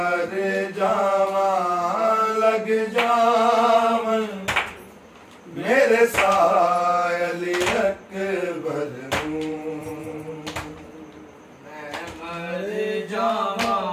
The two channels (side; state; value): both; identical; correlation 1.00